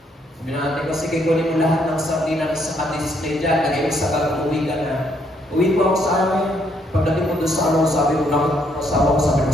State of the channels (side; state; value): both; normal; correlation 0.71